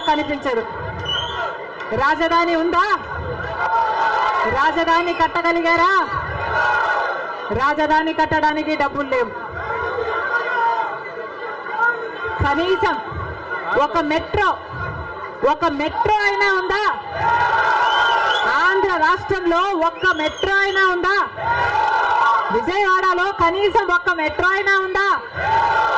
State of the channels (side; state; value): both; identical; correlation 1.00